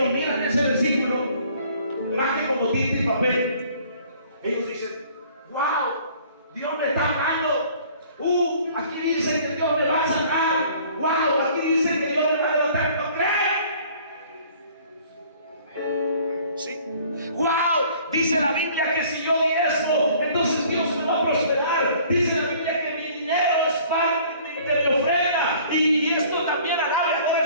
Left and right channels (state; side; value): inverted; both; correlation -0.54